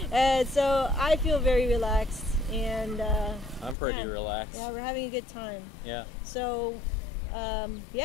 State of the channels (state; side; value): drops out; right; at 3.8 s